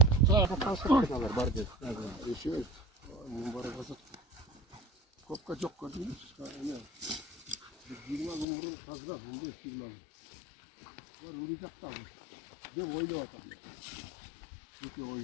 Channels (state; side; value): drops out; right; at 8.5 s